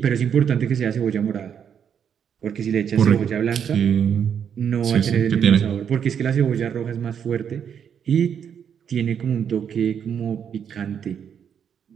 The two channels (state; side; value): quieter; left; 8.0 dB